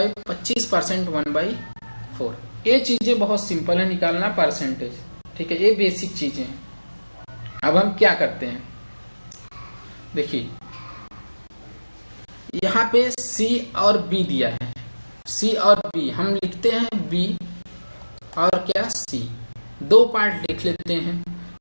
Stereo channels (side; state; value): both; inverted; correlation -1.00